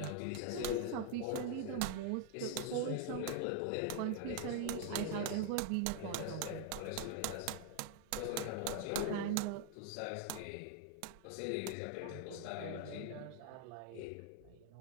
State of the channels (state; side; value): different; both; correlation 0.00